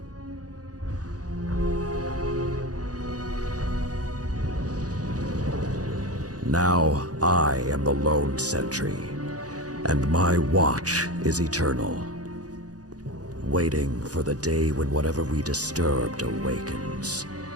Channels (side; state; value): left; late; 0.67 ms